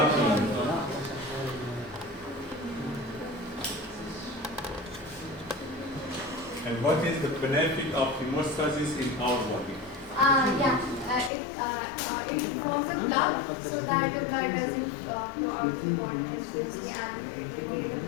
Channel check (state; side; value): drops out; right; at 11.3 s